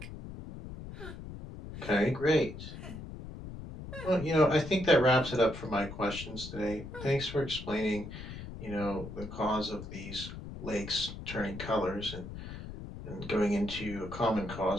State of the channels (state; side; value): noise; left; rumble, 10 dB below the sound